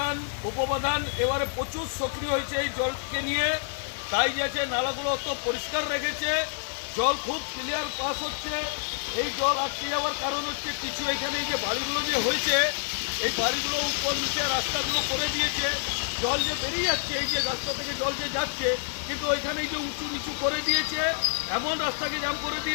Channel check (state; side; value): silent; right; digital silence